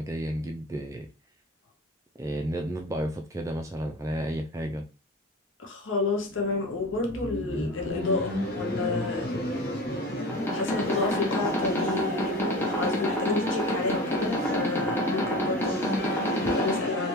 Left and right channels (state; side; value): normal; both; correlation 0.34